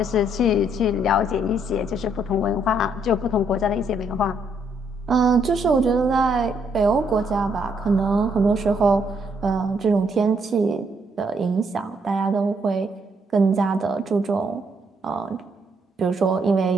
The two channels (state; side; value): normal; both; correlation 0.72